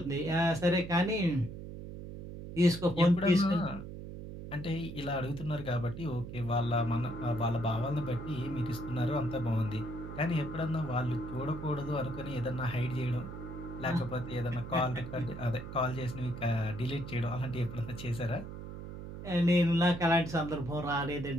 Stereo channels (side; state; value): right; noise; hum, 10 dB below the sound